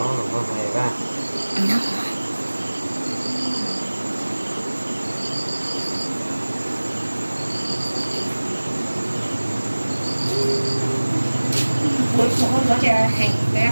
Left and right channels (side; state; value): both; inverted; correlation -1.00